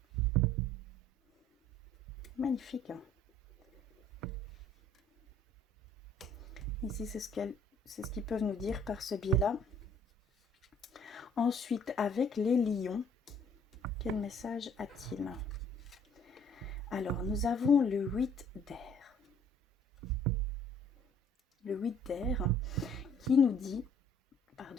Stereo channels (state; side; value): normal; both; correlation 0.58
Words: Magnifique. Hein. Ici, c'est ce qu'ils peuvent nous dire par ce biais-là. Ensuite, avec les lions, quel message a-t-il? Alors, nous avons le 8 d'air. Le 8 d'air qui nous dit,